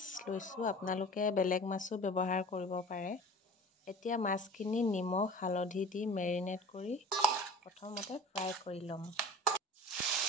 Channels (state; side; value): normal; both; correlation 0.41